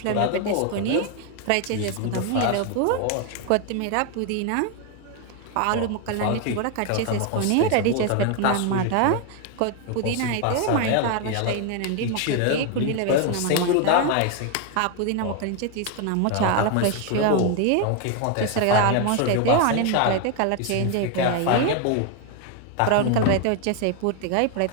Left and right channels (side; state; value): both; different; correlation 0.01